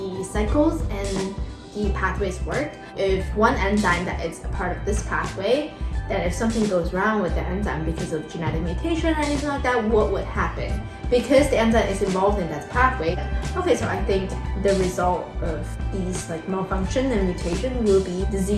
cycles and the pathways work, if one enzyme that is a part of this pathway, then if something goes wrong with the enzyme because of genetic mutation or anything like that, what would happen? Because the enzyme is involved in that pathway. Okay, so I think the result of these like malfunction and mutation will be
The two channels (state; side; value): identical; both; correlation 1.00